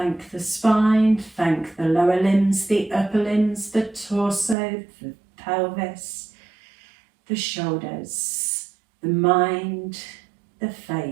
the spine, thank the lower limbs, the upper limbs, the torso, the pelvis, the shoulders, the mind, the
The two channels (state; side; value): drops out; left; at 4.5 s